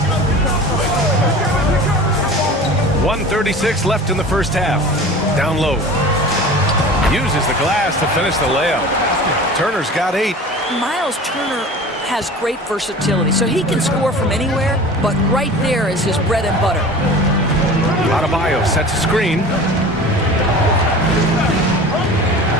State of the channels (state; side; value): normal; both; correlation 0.38